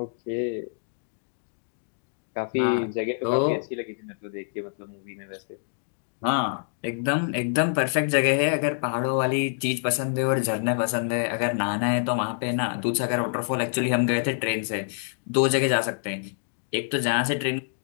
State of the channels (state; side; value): silent; right; digital silence